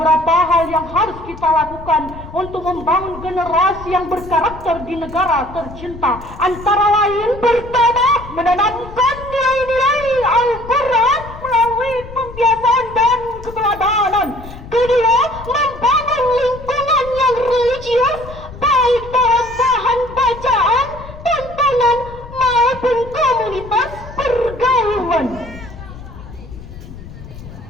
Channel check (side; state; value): left; noise; rumble, 15 dB below the sound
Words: hal yang harus kita lakukan untuk membangun generasi yang berkarakter di negara tercinta. Antara lain, pertama, menanamkan nilai-nilai Al-Quran melalui pembiasaan dan keterampilan